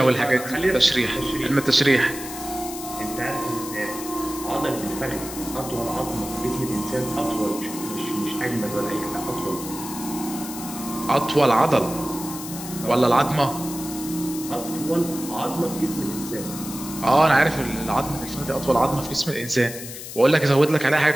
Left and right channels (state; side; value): noise; left; hiss, 11 dB below the sound